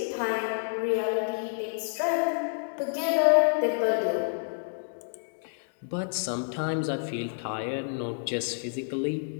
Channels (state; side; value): silent; right; digital silence